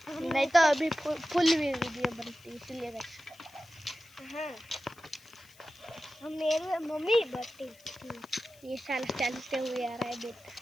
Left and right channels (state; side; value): noise; left; hiss, 26 dB below the sound